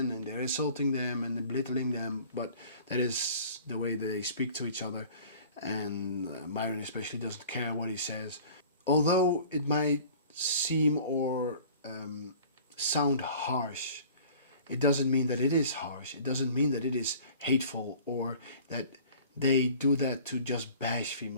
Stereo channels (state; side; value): inverted; both; correlation -0.47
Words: and they're insulting them and belittling them, but that is the way they speak to each other, and Myron especially doesn't care what he says. Although it might seem or sound harsh, it doesn't mean that it is harsh. It doesn't mean that it is hateful, or that they do that to just bash